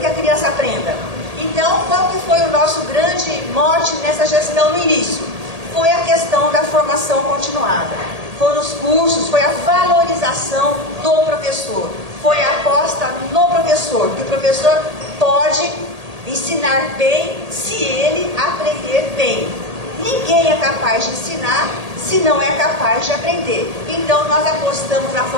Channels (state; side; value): late; left; 1.8 ms